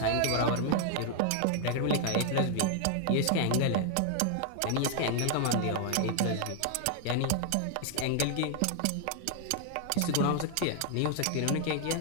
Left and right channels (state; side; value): different; both; correlation 0.00